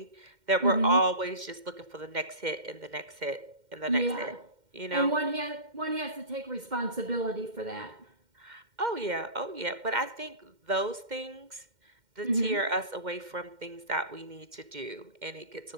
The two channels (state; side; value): late; left; 2.1 ms